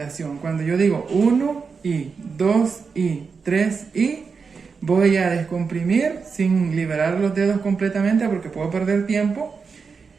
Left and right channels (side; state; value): left; quieter; 5.3 dB